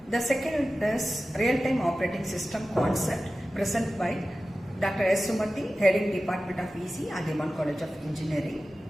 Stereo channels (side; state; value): both; normal; correlation 0.95